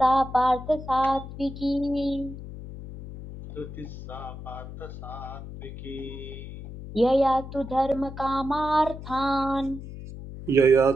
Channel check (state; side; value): noise; left; hum, 12 dB below the sound